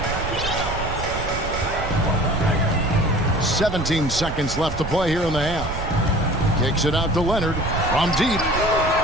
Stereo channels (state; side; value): noise; right; rumble, 7 dB below the sound